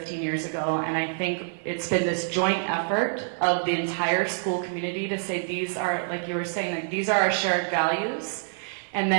years ago, and I think it's been this joint effort of the entire school community to say these are, like you were saying, like these are our shared values. And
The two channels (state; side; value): silent; left; 55 dB below the other